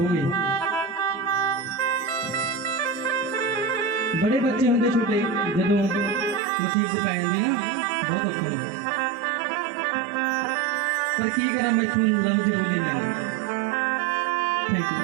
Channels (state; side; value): drops out; left; at 6.4 s